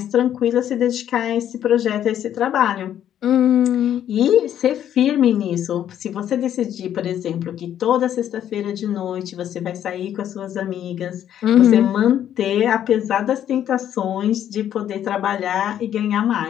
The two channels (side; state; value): right; quieter; 10.5 dB